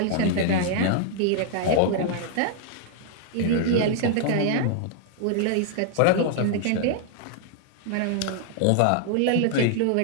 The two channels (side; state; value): both; different; correlation 0.00